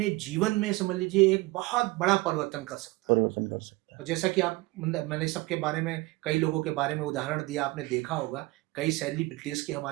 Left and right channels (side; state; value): left; quieter; 21.5 dB